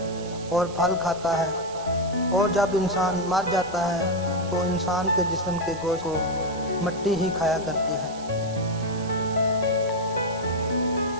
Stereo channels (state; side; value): noise; right; hiss, 17 dB below the sound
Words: और फल खाता है, और जब इंसान मर जाता है तो इंसान के जिस्म के गोश्त को मिट्टी ही खाया करती है।